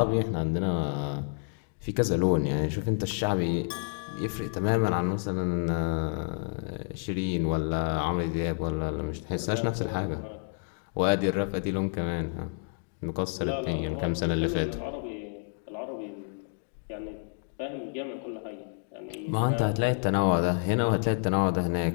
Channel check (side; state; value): right; silent; 57 dB below the other